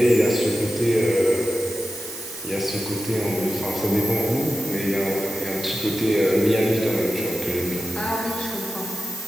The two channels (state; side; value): noise; right; hiss, 12 dB below the sound